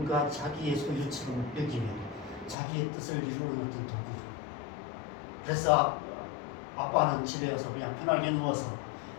자기의 소유처럼 여기며 자기의 뜻을 이루는 어떤 도구로. 그래서 아빠는 집에 와서 그냥 편하게 누워서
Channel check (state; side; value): drops out; right; at 2.6 s